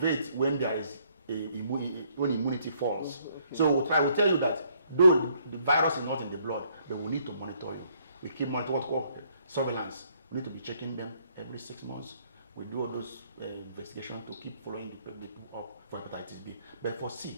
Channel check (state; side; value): inverted; both; correlation -0.67